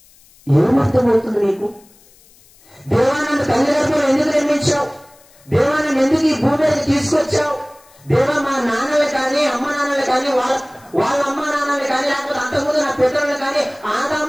ఏమర్థమవుతుంది నీకు? దేవా నన్ను తల్లి గర్భంలో ఎందుకు నిర్మించావు? దేవా నన్ను ఎందుకు ఈ భూమి మీద తీసుకొచ్చావు? దేవా మా నాన్నలు కానీ అమ్మ నాన్నలు కానీ వాళ్ళ అమ్మ నాన్నలు కానీ లేకపోతే అంతకుముందు నా పితరులు కానీ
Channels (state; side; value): noise; left; hiss, 28 dB below the sound